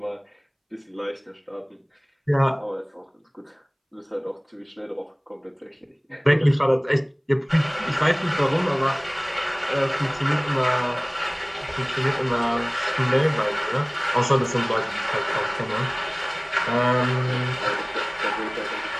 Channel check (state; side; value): identical; both; correlation 1.00